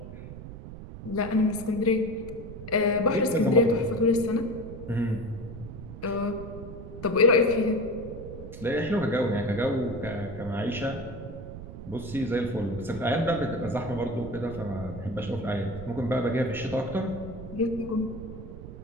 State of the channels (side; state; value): right; noise; rumble, 11 dB below the sound